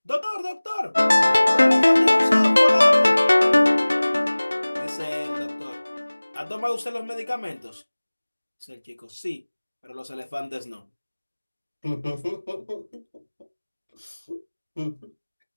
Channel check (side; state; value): both; inverted; correlation -1.00